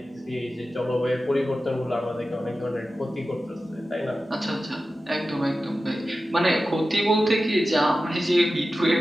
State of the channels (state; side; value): normal; both; correlation 0.94